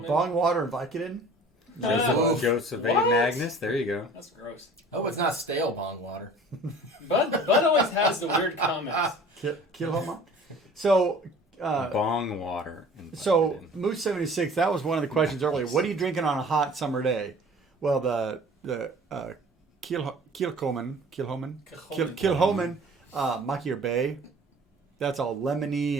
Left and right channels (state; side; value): normal; both; correlation 0.46